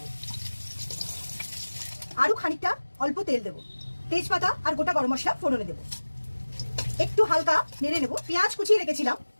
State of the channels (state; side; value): inverted; both; correlation -1.00